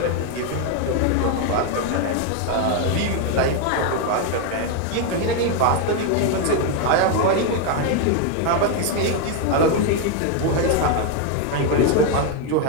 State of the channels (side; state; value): both; different; correlation 0.01